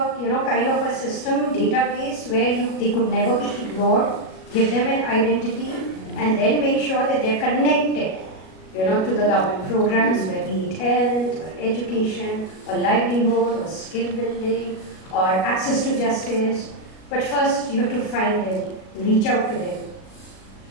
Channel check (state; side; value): late; right; 37 ms